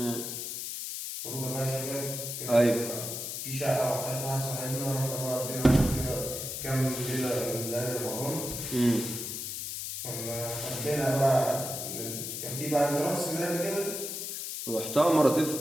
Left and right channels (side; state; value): left; noise; hiss, 5 dB below the sound